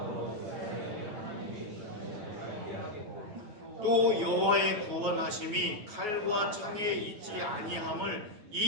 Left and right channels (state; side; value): late; left; 9.4 ms